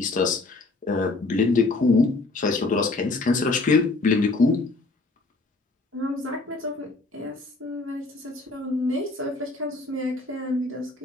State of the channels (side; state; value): right; quieter; 3.3 dB